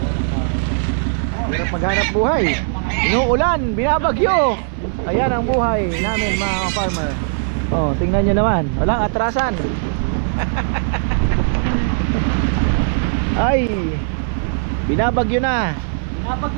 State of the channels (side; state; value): left; silent; 56 dB below the other